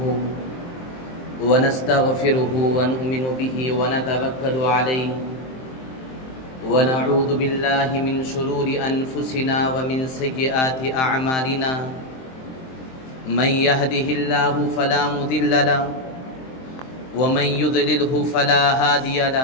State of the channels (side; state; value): right; late; 23 ms